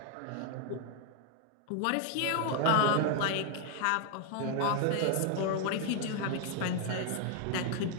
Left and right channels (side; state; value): both; different; correlation 0.00